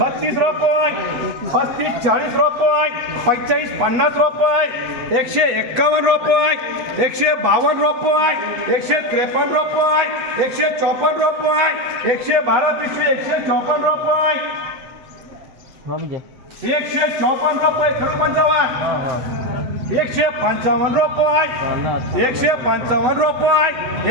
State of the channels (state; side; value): late; left; 8.2 ms